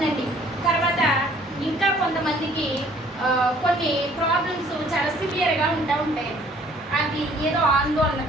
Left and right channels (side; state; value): both; normal; correlation 0.58